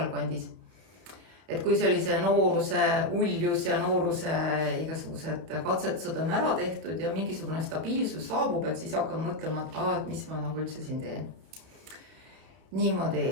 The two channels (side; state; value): left; late; 31 ms